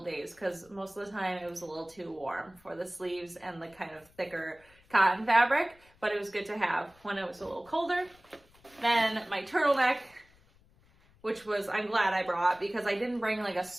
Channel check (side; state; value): left; noise; rumble, 29 dB below the sound